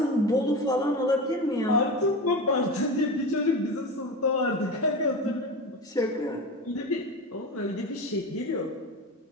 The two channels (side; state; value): both; normal; correlation 0.26